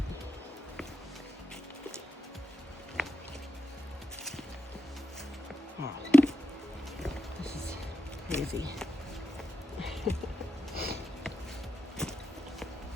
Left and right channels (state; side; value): normal; both; correlation 0.87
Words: Wow, this is crazy.